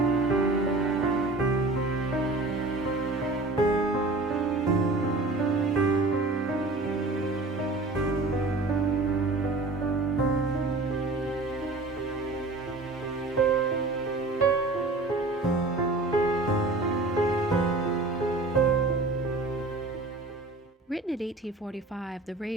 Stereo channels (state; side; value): quieter; left; 3.1 dB